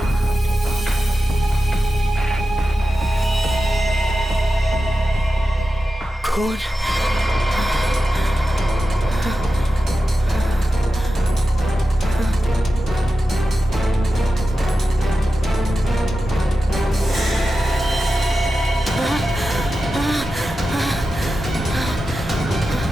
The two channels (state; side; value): normal; both; correlation 0.92